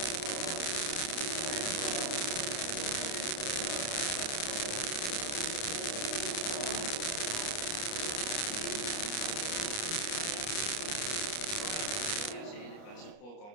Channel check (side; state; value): right; late; 29 ms